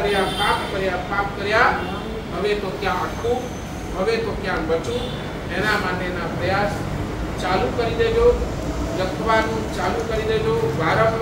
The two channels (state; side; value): identical; both; correlation 1.00